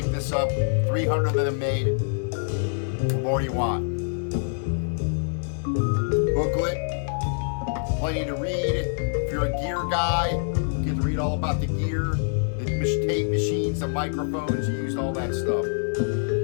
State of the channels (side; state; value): right; silent; digital silence